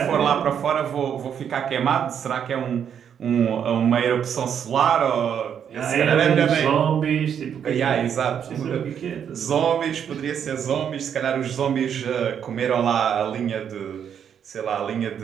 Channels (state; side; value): quieter; left; 8.3 dB